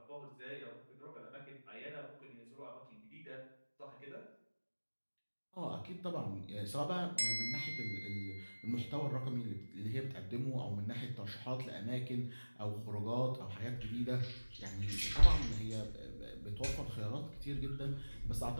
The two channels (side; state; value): both; inverted; correlation -1.00